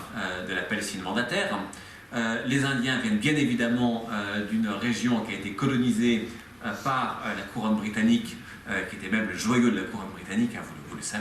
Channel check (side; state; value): both; identical; correlation 1.00